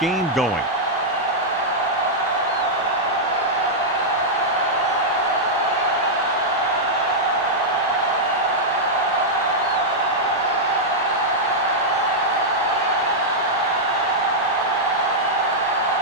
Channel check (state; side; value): normal; both; correlation -0.07